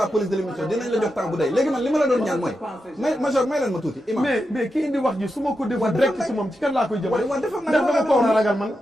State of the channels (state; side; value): normal; both; correlation 0.88